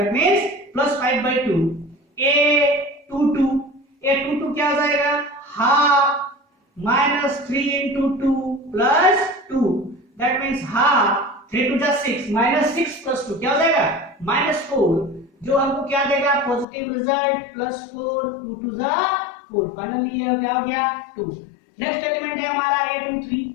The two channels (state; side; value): drops out; right; at 16.7 s